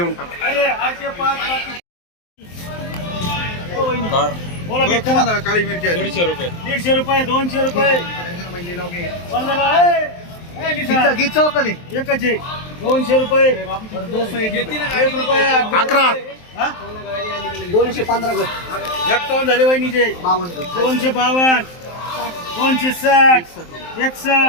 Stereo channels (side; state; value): right; late; 23 ms